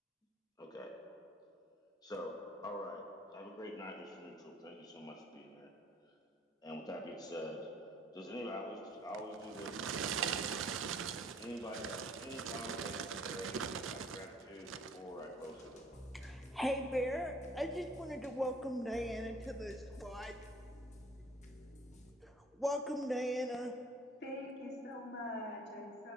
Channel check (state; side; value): normal; both; correlation 0.56